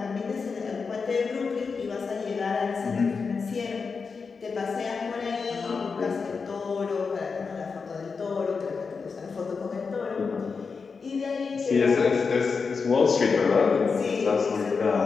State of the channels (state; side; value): quieter; right; 5.1 dB